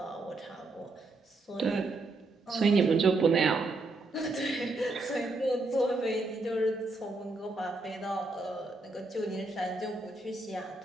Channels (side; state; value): left; quieter; 3.1 dB